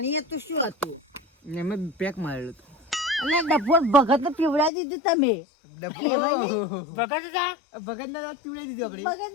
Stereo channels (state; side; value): drops out; right; at 4.7 s